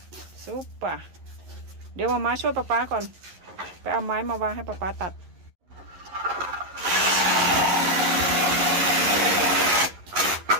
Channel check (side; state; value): left; late; 11 ms